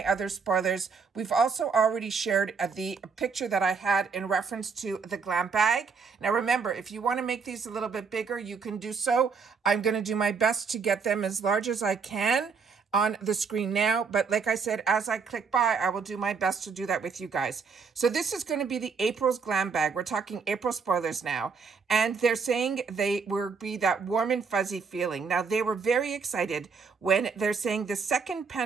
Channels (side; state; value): left; quieter; 5.4 dB